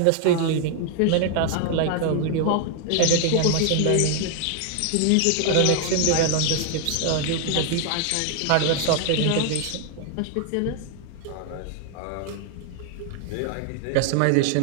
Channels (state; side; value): different; both; correlation 0.00